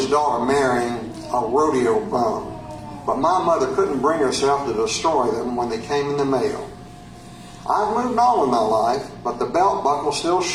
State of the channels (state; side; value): identical; both; correlation 1.00